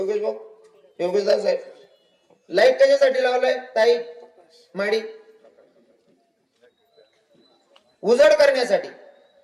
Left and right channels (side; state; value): both; identical; correlation 1.00